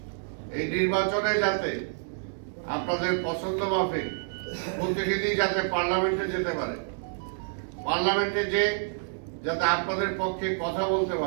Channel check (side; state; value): left; silent; digital silence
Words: এই নির্বাচনে যাতে আপনাদের পছন্দ মাফিক প্রতিনিধি যাতে পার্লামেন্টে যেতে পারে, পার্লামেন্টে যে যাতে আপনাদের পক্ষে কথা বলতে